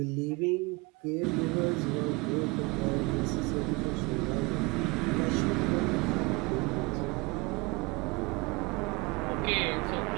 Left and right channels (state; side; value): quieter; left; 25.7 dB